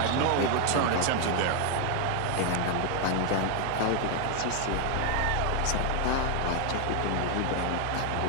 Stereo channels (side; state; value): both; different; correlation 0.00